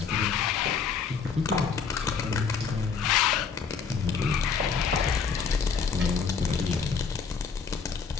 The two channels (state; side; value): quieter; right; 5.9 dB